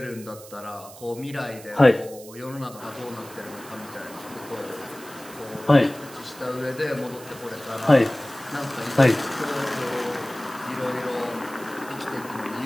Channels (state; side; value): noise; right; hiss, 18 dB below the sound